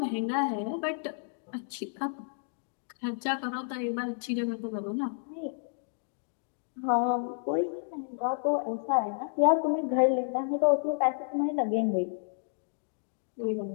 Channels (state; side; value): silent; right; digital silence